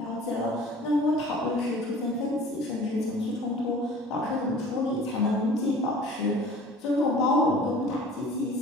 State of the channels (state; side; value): normal; both; correlation 0.45